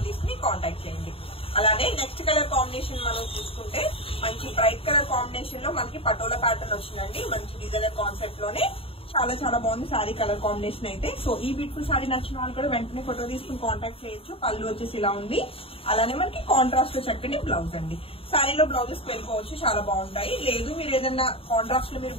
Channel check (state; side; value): late; right; 0.27 ms